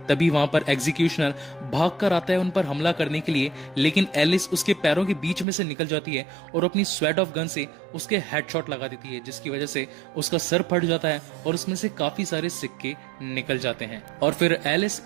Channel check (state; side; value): drops out; left; at 5.5 s